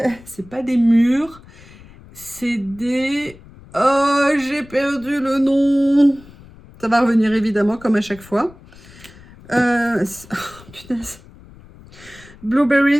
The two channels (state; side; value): noise; left; rumble, 22 dB below the sound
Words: des mûres. C'est des... Oh, j'ai perdu le nom. Ça va revenir évidemment, comme à chaque fois. Oh, punaise.